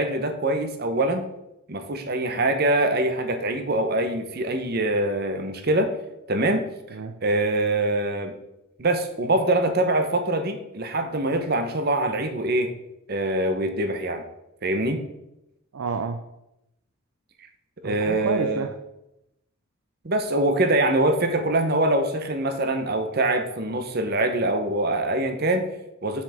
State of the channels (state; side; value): normal; both; correlation -0.07